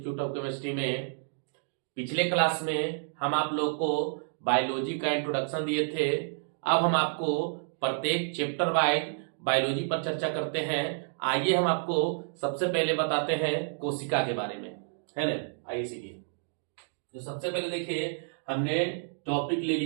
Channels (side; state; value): left; silent; digital silence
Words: ऑफ केमिस्ट्री में। पिछले क्लास में हम आप लोग को बायोलॉजी का इंट्रोडक्शन दिए थे। अब हम आपको प्रत्येक चैप्टर वाइज बायोलॉजी पर चर्चा करते हैं। आइए हम आपको सबसे पहले बताते हैं कोशिका के बारे में, है ना। आइए सीखिए। तो सबसे पहले देखिए, हमने टॉपिक ले